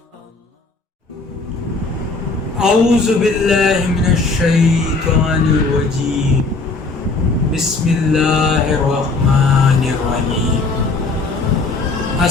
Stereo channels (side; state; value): right; quieter; 3.7 dB